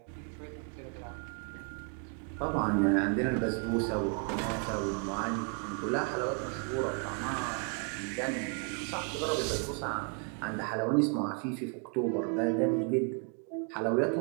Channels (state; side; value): quieter; left; 37.9 dB